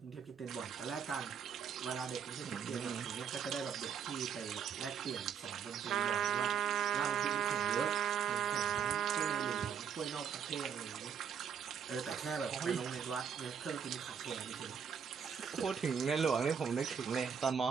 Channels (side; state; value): left; quieter; 7.3 dB